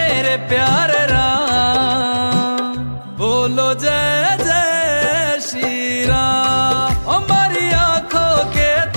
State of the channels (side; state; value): both; inverted; correlation -1.00